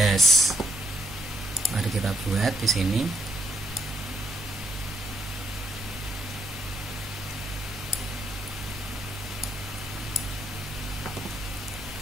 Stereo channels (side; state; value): both; normal; correlation 0.75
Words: Mari kita buat di sini.